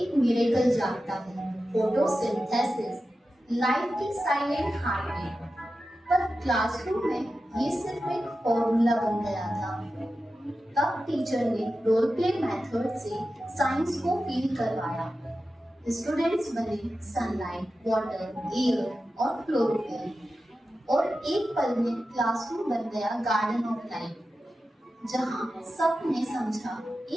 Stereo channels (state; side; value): normal; both; correlation 0.92